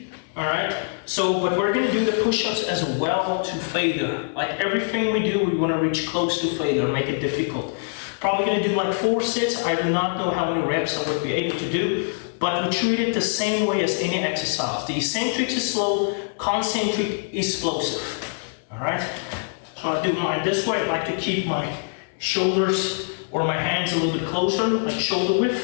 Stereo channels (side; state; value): right; silent; digital silence